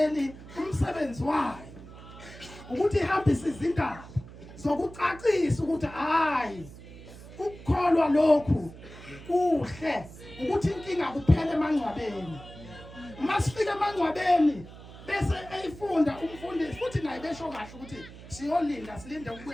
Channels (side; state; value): right; noise; hum, 16 dB below the sound